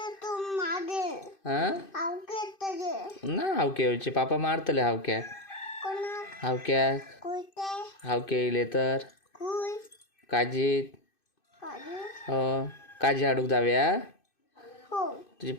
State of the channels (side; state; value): right; late; 2.6 ms